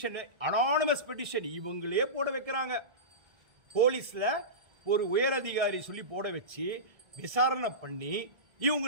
அனானிமஸ் பெட்டிஷன் இவங்களே போட வைக்கிறாங்க. போலீஸ்ல ஒரு உயர் அதிகாரி சொல்லி போட வச்சு விசாரணை பண்ணி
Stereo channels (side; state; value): left; late; 1.7 ms